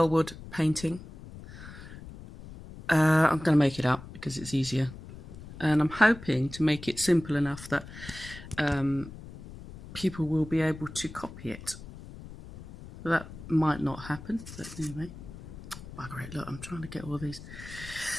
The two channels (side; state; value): left; noise; rumble, 14 dB below the sound